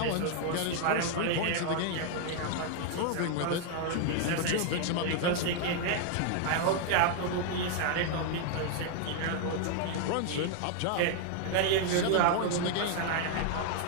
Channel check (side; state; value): both; different; correlation 0.01